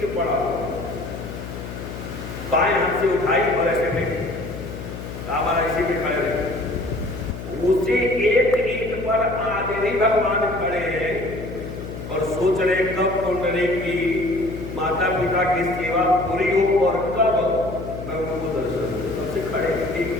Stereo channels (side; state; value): left; noise; hum, 9 dB below the sound